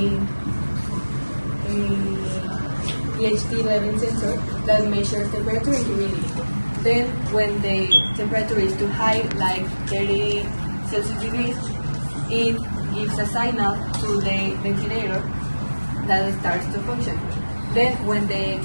pH-11 sensor that measures temperature and humidity. Then, when the temperature is too high, like 30 Celsius degrees, it gives a signal to the ventilator that starts to function. Then, when the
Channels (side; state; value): both; inverted; correlation -1.00